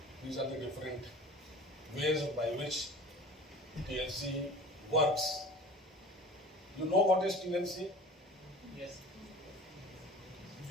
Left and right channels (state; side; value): normal; both; correlation 0.40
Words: These are the different ways by which TLC works. You know what is TLC? Yes.